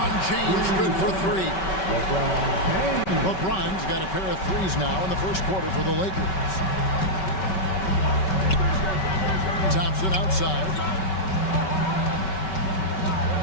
James good for 3. LeBron's got a pair of 3s now in the first quarter for the Lakers. Thompson outside.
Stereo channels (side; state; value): right; late; 5.3 ms